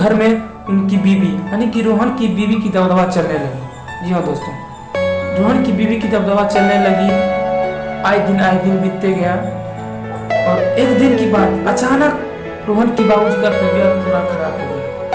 में उनकी बीवी यानी कि रोहन की बीवी की दबदबा चलने लगी। जी हाँ दोस्तों, रोहन की बीवी की दबदबा चलने लगी। आए दिन बीतते गया और एक दिन की बात अचानक रोहन की बाबूजी का तबीयत पूरा खराब हो गई।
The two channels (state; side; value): identical; both; correlation 1.00